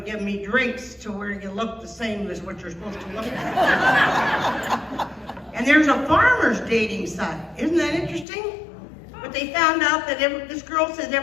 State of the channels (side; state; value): right; drops out; at 8.2 s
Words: to give me drinks to where you look the same as what you're supposed to look like. And there's a farmer's dating site. Isn't that interesting? But they found out that this girl said